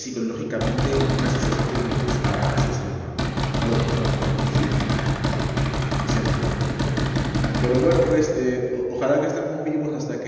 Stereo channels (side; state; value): both; identical; correlation 1.00